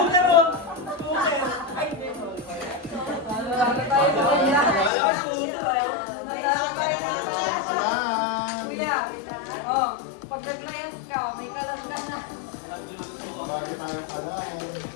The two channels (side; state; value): right; drops out; at 4.9 s